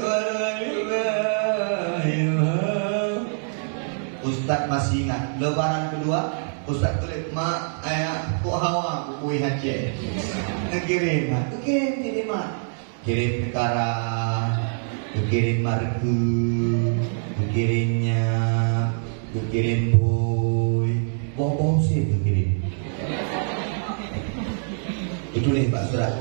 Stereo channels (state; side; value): silent; left; digital silence